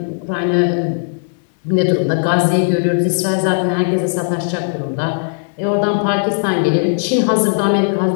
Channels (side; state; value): right; silent; digital silence